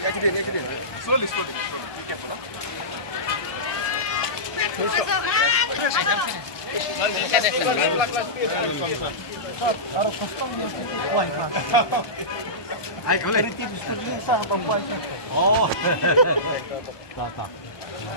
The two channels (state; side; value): late; right; 1.2 ms